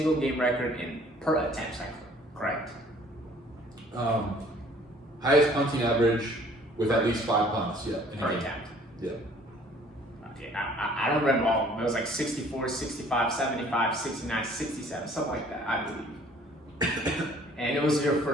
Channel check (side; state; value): both; normal; correlation 0.55